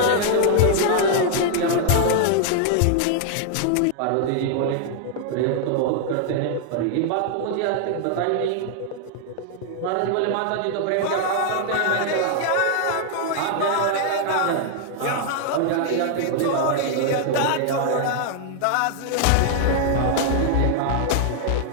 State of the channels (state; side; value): different; both; correlation 0.00